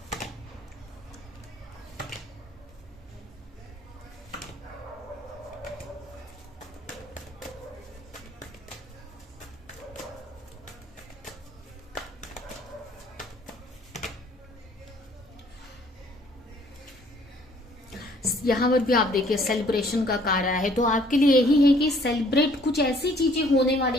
यहाँ पर भी आप देखिए सेलिब्रेशन का कार्य है, तो आपके लिए यही है कि सेलिब्रेट, कुछ ऐसी चीजें होने वाली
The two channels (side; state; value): both; normal; correlation 0.60